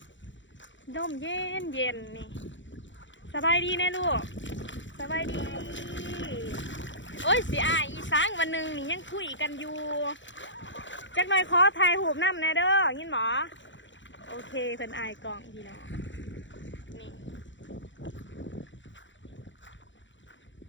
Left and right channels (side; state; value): right; late; 0.54 ms